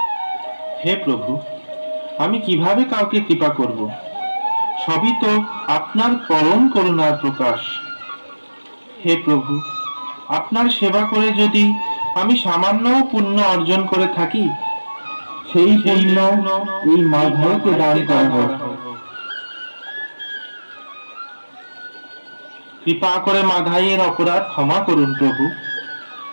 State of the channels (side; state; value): both; inverted; correlation -1.00